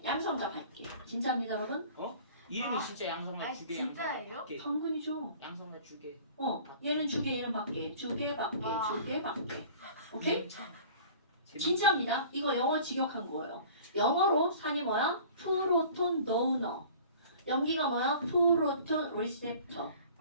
양성자 받게. 진짜입니다, 여러분? 이름이 아. 진짜 양성만 아니, 주게 진짜예요? 당근이죠. 양성만 주게. 얘는 주게, 얘는 받게. 주게, 받게, 와. 주게, 받게. 오케이? 재밌- 진짜입니다. 이거 영어 직역한 거예요. 영어로 산이 뭐야? 프로톤 도너. 연기가 뭐야? 프로톤 리셉터.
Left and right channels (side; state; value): both; inverted; correlation -0.46